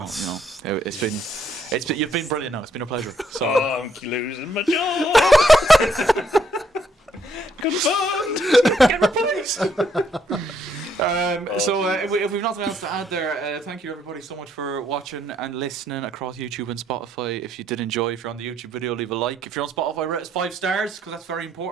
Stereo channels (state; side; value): normal; both; correlation 0.71